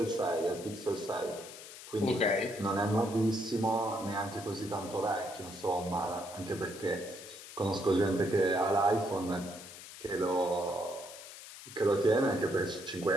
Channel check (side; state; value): left; noise; hiss, 14 dB below the sound